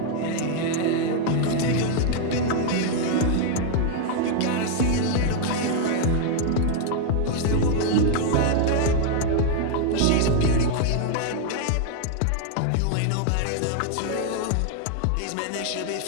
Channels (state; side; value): different; both; correlation 0.00